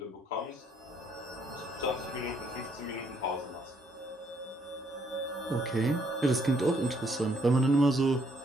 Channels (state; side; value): normal; both; correlation 0.69